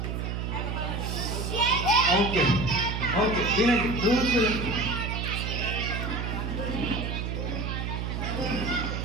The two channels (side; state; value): right; noise; hum, 3 dB below the sound